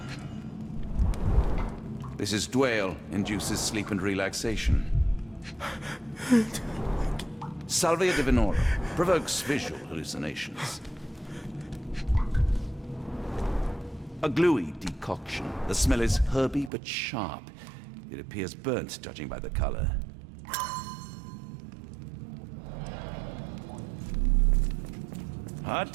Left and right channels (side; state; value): left; drops out; at 16.7 s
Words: This is Dwale, induces sleep and relaxation. Salvia divinorum, provokes visual hallucinations. A gluey decoction. The smell is herby but sharp. It appears burnt, judging by the color. Hard